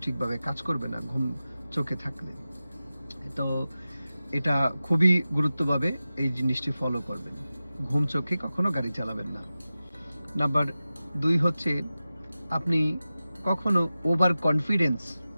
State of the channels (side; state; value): both; inverted; correlation -0.95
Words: ঠিকভাবে কাজ করবে না ঘুম চোখে থাকলে। তো এটা খুবই গুরুত্বভাবে এই জিনিসটি ফলো করবেন। ঘুম চোখে কখনো গাড়ি চালাবেন না। নাম্বার 2 হচ্ছে আপনি কখনো ওভার কনফিডেন্স